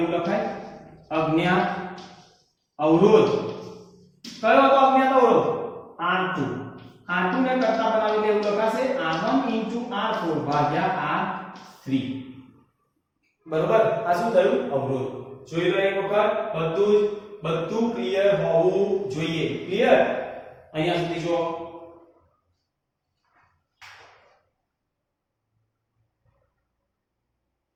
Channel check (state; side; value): identical; both; correlation 1.00